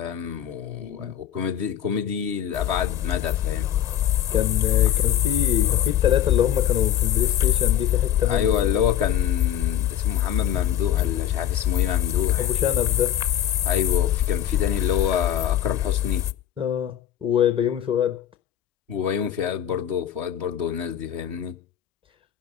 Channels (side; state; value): right; quieter; 10.6 dB